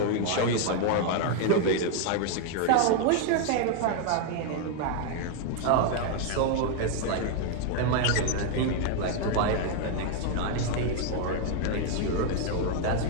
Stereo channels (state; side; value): different; both; correlation 0.00